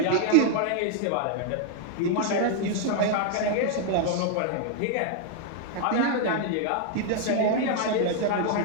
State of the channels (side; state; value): both; different; correlation 0.00